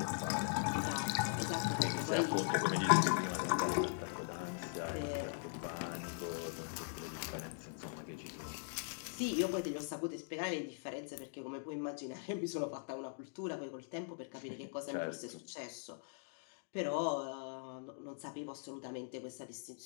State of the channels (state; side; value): silent; right; digital silence